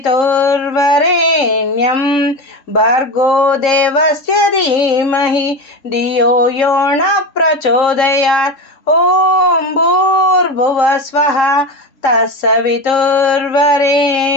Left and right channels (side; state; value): right; late; 3.7 ms